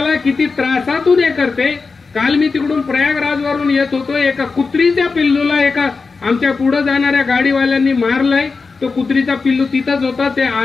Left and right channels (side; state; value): right; quieter; 4.5 dB